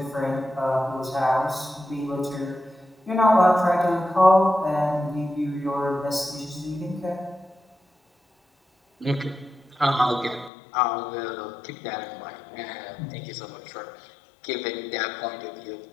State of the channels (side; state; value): right; drops out; at 10.5 s